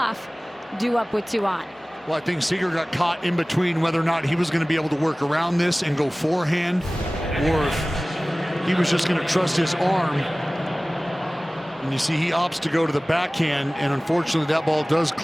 due up with 2 on. Well, I think Seager got caught in between whether or not he was going to be able to work around this and go forehand, or if he was just going to trust his arm. And you see he opts to go to the backhand, and unfortunately that ball does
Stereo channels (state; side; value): normal; both; correlation 0.98